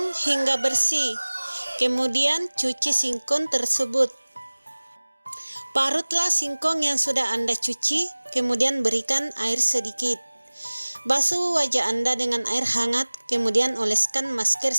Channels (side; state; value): both; inverted; correlation -1.00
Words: hingga bersih, kemudian cuci singkong tersebut. Parutlah singkong yang sudah Anda cuci, kemudian berikan air sedikit. Basuh wajah Anda dengan air hangat, kemudian oleskan masker